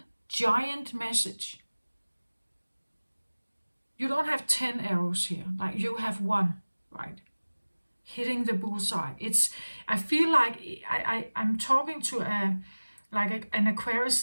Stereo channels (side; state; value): both; inverted; correlation -1.00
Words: giant message. You don't have 10 arrows here, like you have one, right? Hitting the bullseye. I feel like I'm talking to an Aquarius